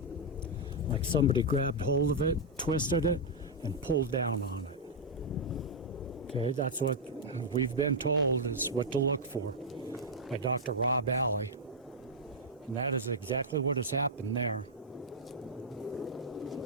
Like somebody grabbed hold of it, twisted it, and pulled down on it. Okay, that's what we've been told is what to look for by Dr. Rob Alley. And that is exactly what has happened there.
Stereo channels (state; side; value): normal; both; correlation -0.04